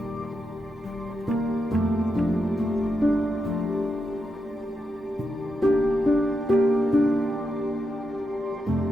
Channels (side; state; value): both; normal; correlation 0.85